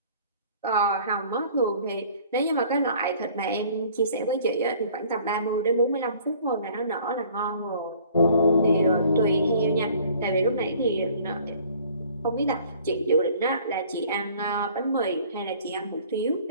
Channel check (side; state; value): both; inverted; correlation -0.53